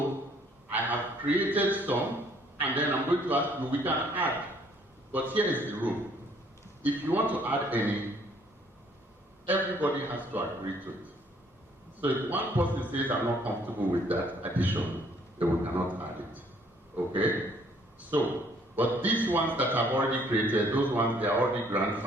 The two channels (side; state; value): both; normal; correlation 0.62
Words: I have created some, and then I'm going to ask you, we can add. But here is the rule. If you want to add any, everybody has to agree to it. So if one person says, I'm not comfortable with that addition, then we cannot add it. Okay? So, but these ones that I've already created, those ones, they are already